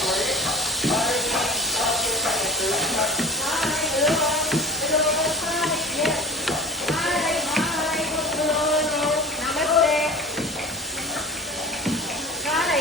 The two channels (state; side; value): normal; both; correlation 0.36